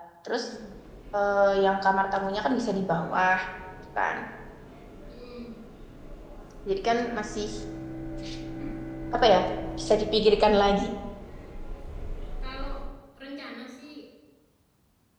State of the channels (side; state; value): both; identical; correlation 1.00